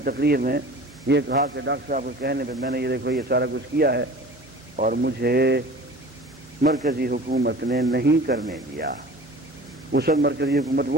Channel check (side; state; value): both; normal; correlation 0.41